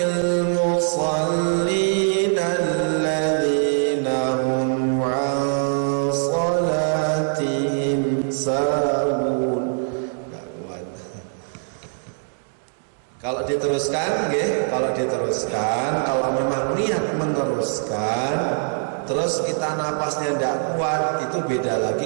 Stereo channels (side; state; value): left; silent; digital silence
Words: musallin alladzina hum 'an salatihim sahun. Enggak kuat. Kalau diteruskan, nggih, kalau memang niat meneruskan, terus kita napasnya tidak kuat, itu beda